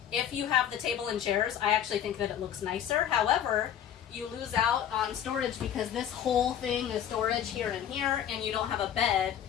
If you have the table and chairs, I actually think that it looks nicer. However, you lose out on storage because this whole thing is storage here and here, and you don't have a bed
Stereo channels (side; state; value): right; quieter; 9.7 dB